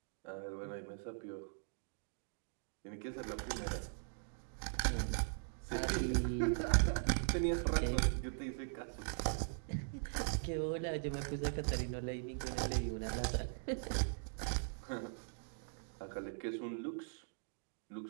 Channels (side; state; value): left; silent; digital silence